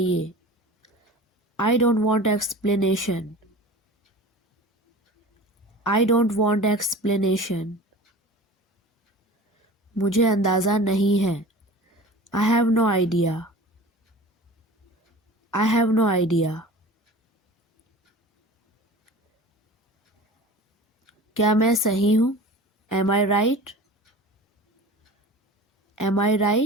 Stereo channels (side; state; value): both; normal; correlation 0.38